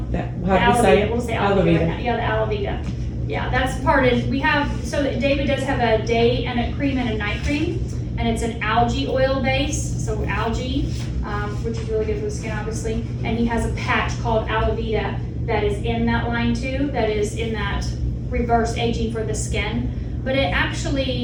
do we say it? We'll say Alavita right now. Yeah, the Alavita. Yeah, that's part of, we have, so that David does have a day and a cream and a night cream, and it's an algae oil base, so algae, which is really good for the skin, obviously. And he has a patch called Alavita that is in that line too, that is in that reverse aging for the skin. But it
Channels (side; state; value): both; identical; correlation 1.00